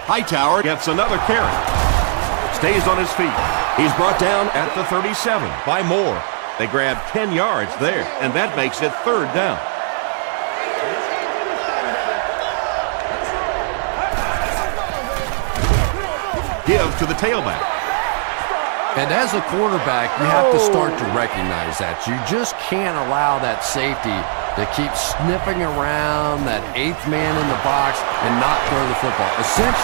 Hightower gets another carry. Stays on his feet. He's brought down at the 37 by Moore. They grab 10 yards there, and that makes it third down. Give to the tailback. And as a quarterback, you have to start to recognize that. You just can't allow that safety to keep sniffing around that 8th man in the box and not throw the football.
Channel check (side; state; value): left; silent; 61 dB below the other